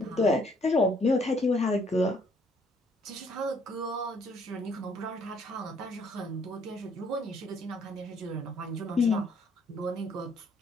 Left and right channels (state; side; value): normal; both; correlation 0.65